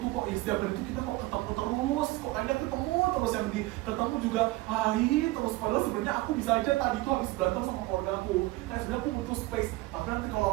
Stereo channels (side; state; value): left; quieter; 19.5 dB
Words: kok setiap hari itu kita kok ketemu terus, kok kayaknya ketemu terus, yang ketemu juga hai terus, padahal sebenarnya aku bisa aja tadi tuh habis berantem sama keluarga aku, kayak sebenarnya aku butuh space, tapi nanti kalau